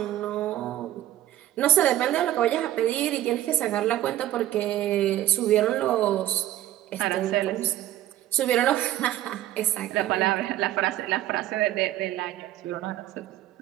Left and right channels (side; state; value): left; quieter; 13.5 dB